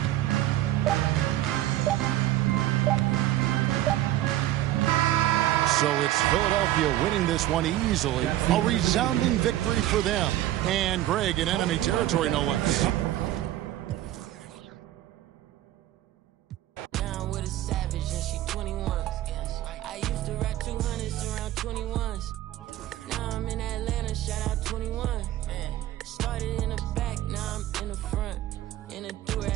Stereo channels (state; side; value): quieter; left; 14.1 dB